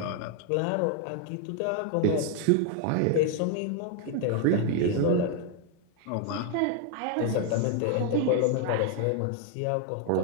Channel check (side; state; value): both; different; correlation 0.00